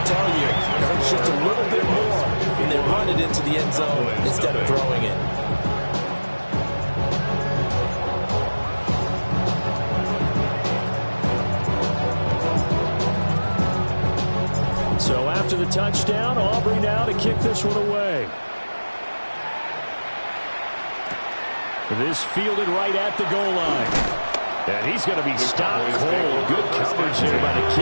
tell you, it hurts just a little bit more when they run it into the end zone instead of throwing it. So after the touchdown, Aubrey now to kick this one away. This fielded right at the goal line. And he's going to be stopped cold. Good coverage here by the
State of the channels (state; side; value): inverted; both; correlation -1.00